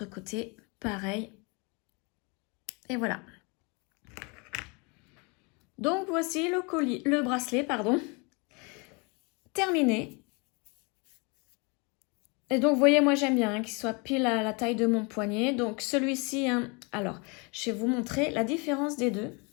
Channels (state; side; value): quieter; right; 30.9 dB